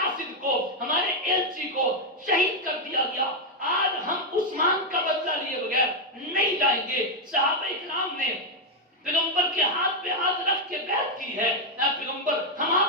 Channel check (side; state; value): both; normal; correlation 0.02